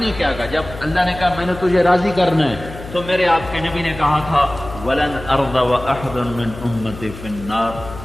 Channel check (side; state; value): left; noise; hum, 13 dB below the sound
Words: کیا کہا؟ جب اللہ نے کہا میں نے تجھے راضی کرنا ہے تو میرے آپ کے نبی نے کہا تھا وَلَنْ أَرْضَ وَأَحْدٌ مِّنْ أُمَّتِي فِي